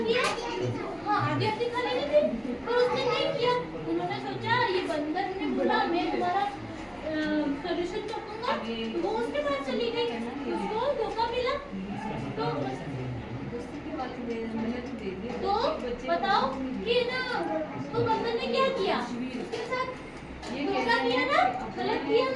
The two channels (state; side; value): identical; both; correlation 1.00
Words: हाँ आधी खा लेनी थी, पर उसने नहीं किया। उन्होंने सोचा ये बंदर ने बोला मैं तुम्हारा सॉल्यूशन कर दूंगा, वो उसके पास चली गई, उसको धोखा मिला। तो बताओ कि ना, तो बंदर ने क्या किया, उसके साथ धोखा किया ना, गलत किया